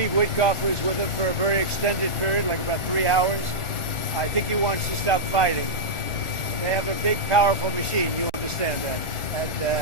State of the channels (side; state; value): right; late; 1.4 ms